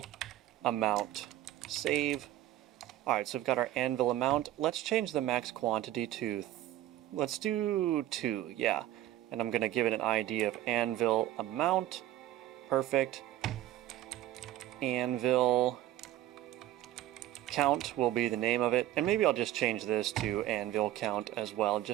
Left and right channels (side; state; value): left; quieter; 13.9 dB